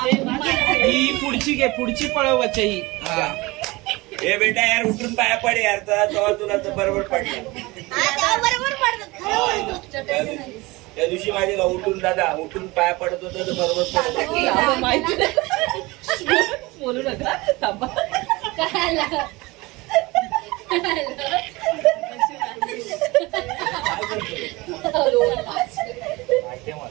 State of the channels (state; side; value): quieter; left; 22.4 dB